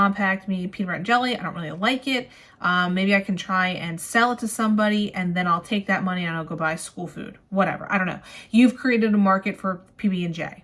packed me peanut butter and jelly. I don't really like it. Maybe I can try and sell it to somebody and then I'll take that money and I'll go buy school food. Whatever. I don't know. You've created a market for PB&J.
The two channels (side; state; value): both; identical; correlation 1.00